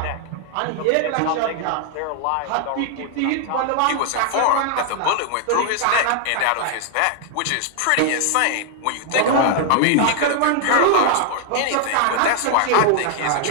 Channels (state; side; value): different; both; correlation 0.00